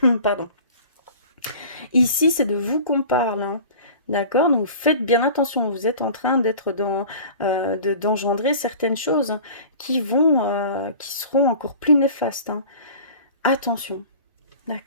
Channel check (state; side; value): inverted; both; correlation -0.42